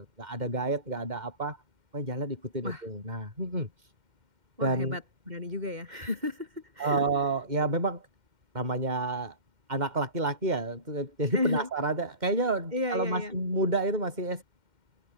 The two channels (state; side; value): late; left; 2.1 ms